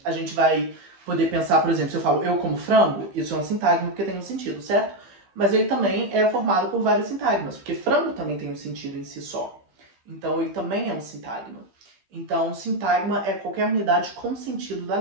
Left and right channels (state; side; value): late; left; 16 ms